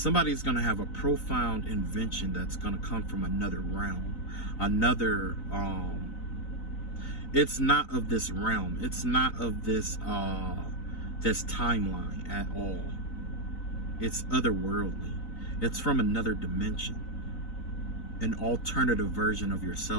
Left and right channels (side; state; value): right; late; 4.0 ms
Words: going to have a profound invention that's going to come from another realm. Another, it's not of this realm. It's not of this, this timeline at all. It's otherworldly. It's from another dimension. An alternative version of